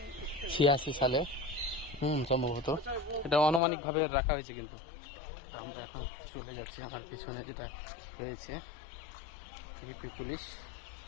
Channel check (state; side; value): drops out; right; at 3.6 s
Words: সালে সম্ভবত। এটা আনুমানিকভাবে রাখা হয়েছে কিন্তু। তো আমরা এখন চলে যাচ্ছি, আমার পিছনে যেটা রয়েছে ইউপি পুলিশ,